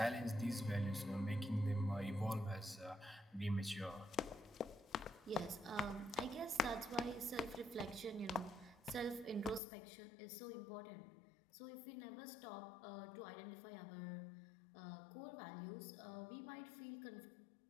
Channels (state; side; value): drops out; right; at 9.6 s